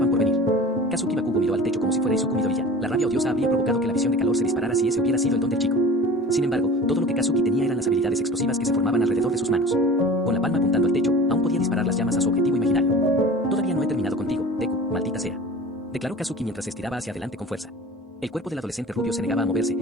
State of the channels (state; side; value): normal; both; correlation 0.39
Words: por venir. Kazuki Bakugo miró al techo como si fuera Izuku Midoriya. La rabia odiosa habría provocado que la visión de calor se disparara si ese hubiera sido el don del chico. Sin embargo, todo lo que Kazuki tenía eran las habilidades explosivas que se formaban alrededor de sus manos. Con la palma apuntando al techo, aún podía disparar las llamas a su objetivo imaginario. Todavía no he terminado contigo, Deku, maldita sea, declaró Kazuki mientras se estiraba hacia adelante con fuerza. El cuerpo del adolescente rubio se negaba a moverse,